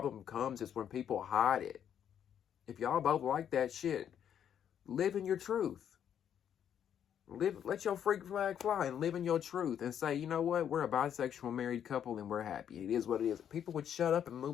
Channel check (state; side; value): quieter; right; 9.1 dB